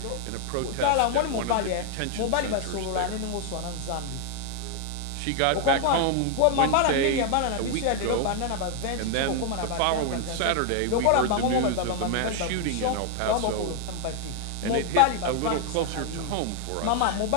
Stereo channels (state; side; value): different; both; correlation 0.00